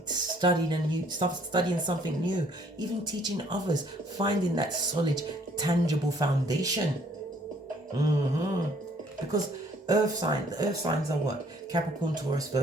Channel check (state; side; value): normal; both; correlation 0.61